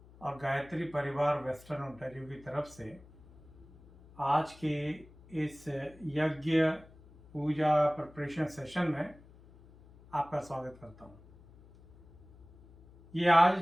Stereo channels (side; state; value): left; noise; hum, 23 dB below the sound